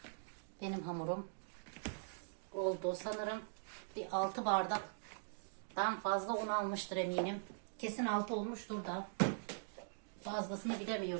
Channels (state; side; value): silent; left; digital silence